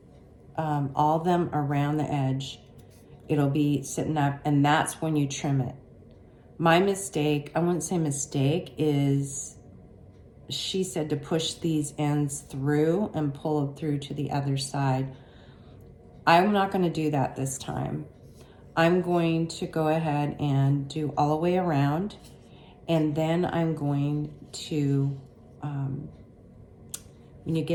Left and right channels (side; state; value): both; identical; correlation 1.00